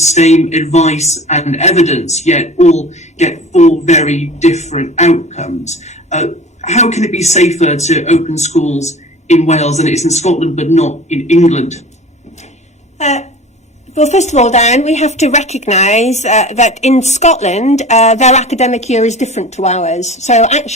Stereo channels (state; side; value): normal; both; correlation 0.40